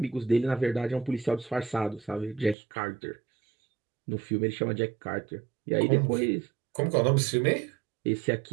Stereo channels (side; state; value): left; drops out; at 2.6 s